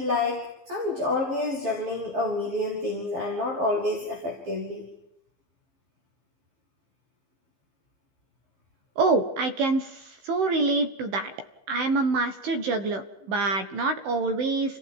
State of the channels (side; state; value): left; late; 15 ms